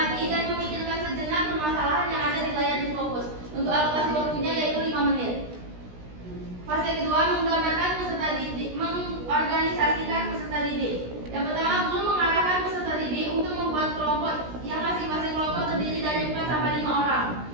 dan memikirkan sejenak permasalahan yang ada di layar yang fokus. Untuk alokasi waktunya yaitu 5 menit. Fase kedua, menggambarkan peserta didik, mengorganisasikan peserta didik. Yang pertama, guru mengarahkan peserta didik untuk membuat kelompok yang masing-masing kelompok terdiri dari 4 sampai 5 orang.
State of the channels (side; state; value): left; late; 16 ms